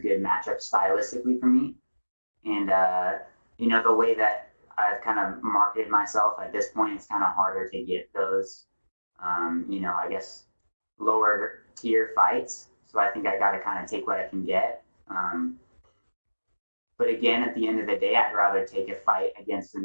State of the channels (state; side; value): inverted; both; correlation -1.00